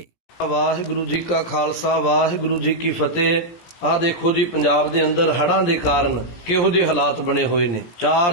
ਵਾਹਿਗੁਰੂ ਜੀ ਕਾ ਖਾਲਸਾ, ਵਾਹਿਗੁਰੂ ਜੀ ਕੀ ਫਤਿਹ। ਆਹ ਦੇਖੋ ਜੀ, ਪੰਜਾਬ ਦੇ ਅੰਦਰ ਹੜ੍ਹਾਂ ਦੇ ਕਾਰਨ ਕਿਹੋ ਜਿਹੇ ਹਾਲਾਤ ਬਣੇ ਹੋਏ ਨੇ।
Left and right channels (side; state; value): right; late; 17 ms